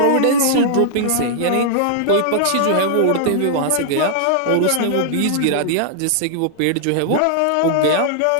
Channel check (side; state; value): both; different; correlation -0.01